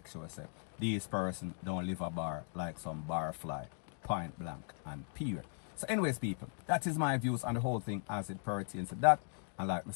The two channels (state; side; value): silent; right; 52 dB below the other